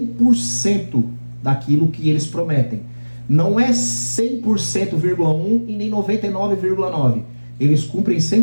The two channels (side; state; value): both; inverted; correlation -1.00